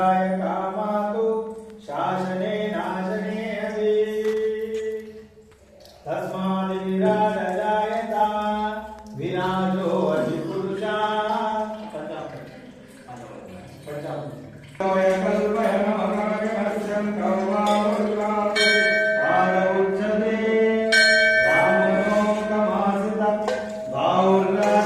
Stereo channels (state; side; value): identical; both; correlation 1.00